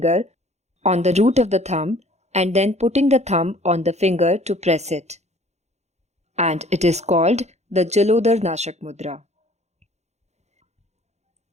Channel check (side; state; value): left; late; 0.32 ms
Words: on the root of the thumb and then putting the thumb on the finger to press it. And it is called the Jalodhar Nashak Mudra.